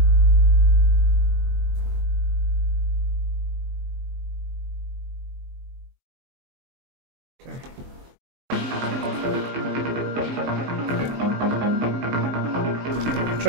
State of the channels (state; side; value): late; left; 23 ms